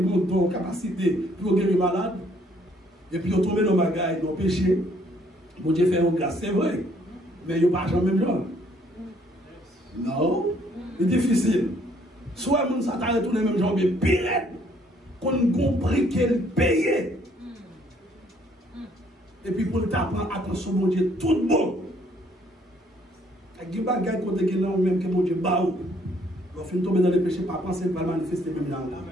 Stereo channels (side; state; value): both; normal; correlation 0.64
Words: une capacité pour guérir malade. Et puis ils tombent dans le bagaille, dans le péché. Bon Dieu fait une grâce, c'est vrai. Mais ils n'ont pas jamais même genre. Non. C'est difficile. Soit les gens s'attendent tous les mêmes gens, mais pire, qu'on compris qu'elle payait. Et puis pour t'apprendre, attention, mon Dieu, tout bon. Il y a des bagages qui ont même que mon Dieu baou. On finit tomber dans les péchés, pas penser pas manifester même dans là.